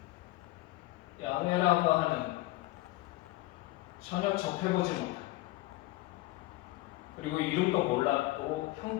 야훼라고 하는 전혀 접해보지 못한, 그리고 이름도 몰랐고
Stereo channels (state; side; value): quieter; right; 18.9 dB